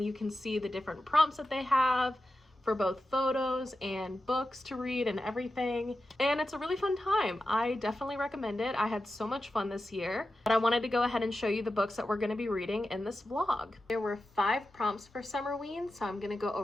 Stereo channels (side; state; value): both; normal; correlation 0.91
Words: you can see the different prompts that they have for both photos and books to read and everything. And it's a really fun time. I definitely recommend it. I had so much fun this year, but I wanted to go ahead and show you the books that we're going to be reading in this vlog. There were 5 prompts for Summerween, so I'm going to go